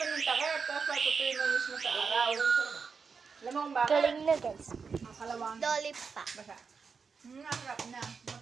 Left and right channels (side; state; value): left; quieter; 5.4 dB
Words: ng takip, tapos patutuin mo mismo sa araw. Alam mo kung bakit? Galing na, guys. Makalawang. Dolly pa. Basa. Nakakap na.